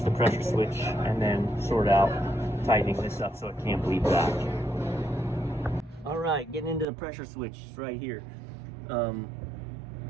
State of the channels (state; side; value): drops out; left; at 6.9 s